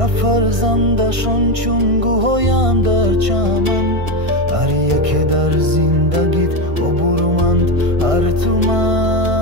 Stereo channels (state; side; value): late; left; 1.6 ms